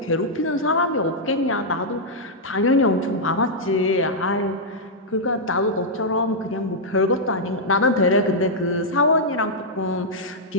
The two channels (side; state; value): both; normal; correlation -0.06